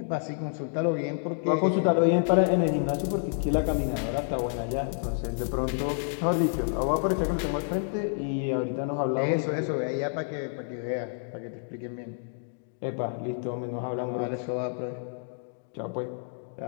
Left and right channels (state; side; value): silent; right; digital silence